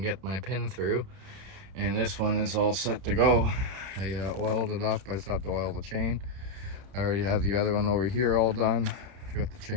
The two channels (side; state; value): left; late; 31 ms